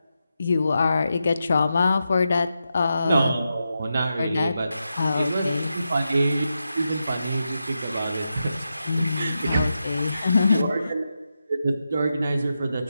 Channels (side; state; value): both; inverted; correlation -0.88